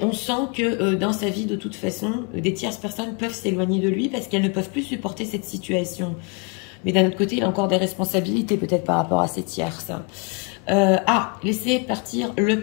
on sent que dans sa vie, de toute façon, des tierces personnes peuvent s'éloigner de lui parce qu'elles ne peuvent plus supporter cette situation. Mais d'un autre côté, il a encore des responsabilités peut-être par rapport à ces tierces. Laissez partir le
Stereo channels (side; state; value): right; quieter; 33.7 dB